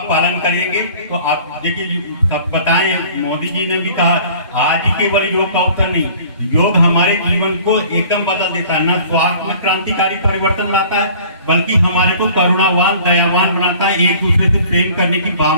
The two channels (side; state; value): both; inverted; correlation -0.49